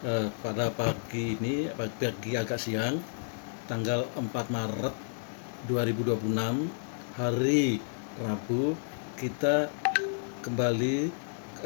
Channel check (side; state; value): right; silent; digital silence